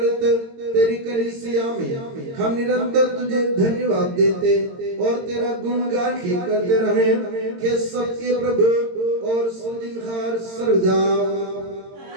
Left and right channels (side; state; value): left; late; 22 ms